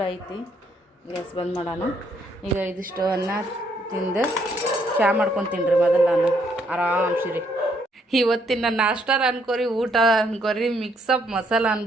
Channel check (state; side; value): normal; both; correlation 0.71